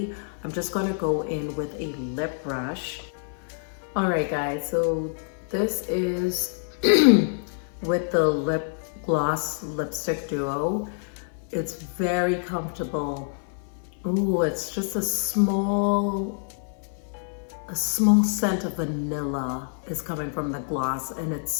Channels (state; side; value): silent; right; 57 dB below the other